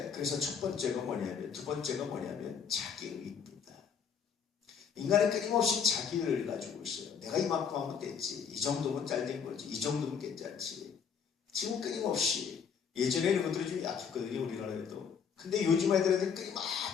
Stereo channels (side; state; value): right; quieter; 6.8 dB